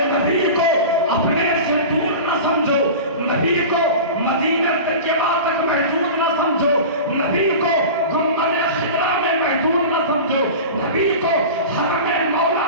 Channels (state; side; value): inverted; both; correlation -0.32